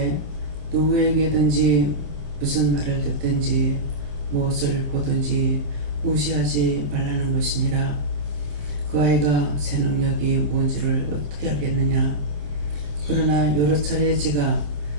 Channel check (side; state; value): left; late; 27 ms